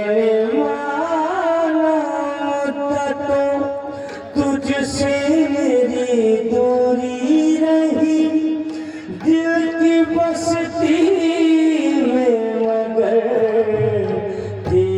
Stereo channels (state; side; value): identical; both; correlation 1.00